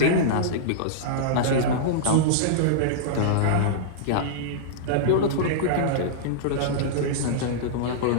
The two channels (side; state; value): both; different; correlation -0.03